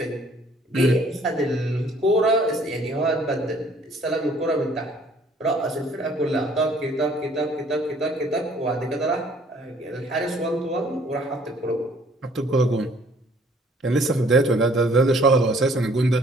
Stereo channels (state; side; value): normal; both; correlation 0.59